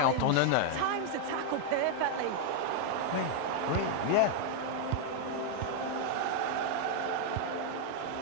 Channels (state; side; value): different; both; correlation 0.00